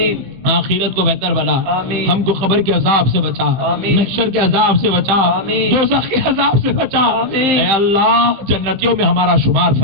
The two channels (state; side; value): late; left; 15 ms